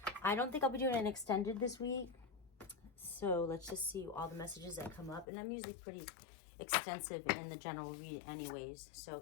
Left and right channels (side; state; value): right; drops out; at 5.2 s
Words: I don't think I'll be doing an extended this week. So let's just see all the messages that come up. And I'm usually pretty extensive in the general read anyways.